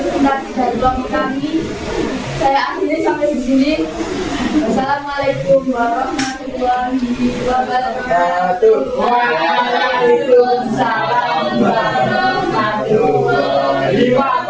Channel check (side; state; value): both; identical; correlation 1.00